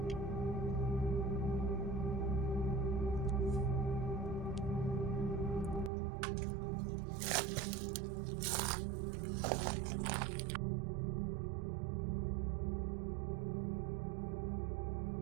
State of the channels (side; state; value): left; drops out; at 5.9 s